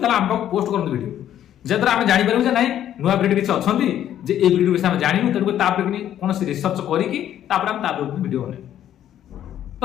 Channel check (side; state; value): right; quieter; 11.1 dB